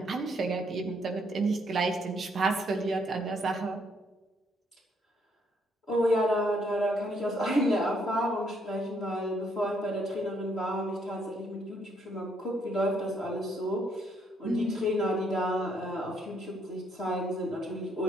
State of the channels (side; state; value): both; normal; correlation 0.71